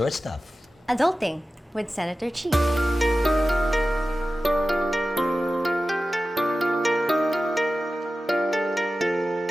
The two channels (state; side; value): normal; both; correlation 0.94